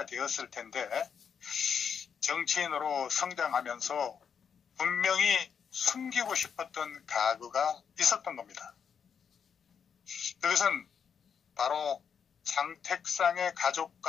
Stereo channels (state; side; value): quieter; right; 7.1 dB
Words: 텐데 정치인으로 성장하면서 분명히 숨기고 싶었던 가구가 있었던 겁니다. 그것은 바로 장택상의